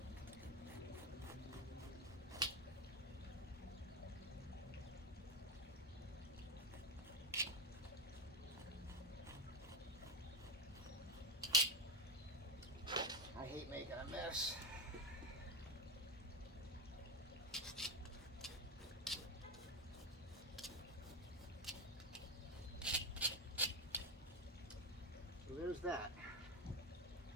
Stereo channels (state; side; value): normal; both; correlation 0.13